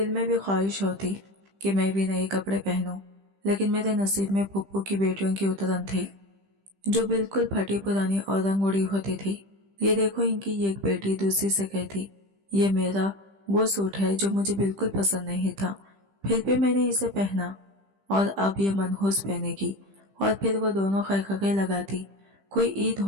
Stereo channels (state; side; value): late; left; 15 ms